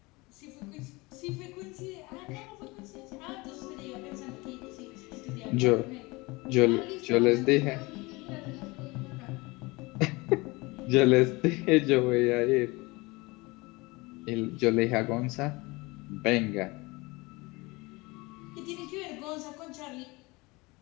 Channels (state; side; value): quieter; right; 24.0 dB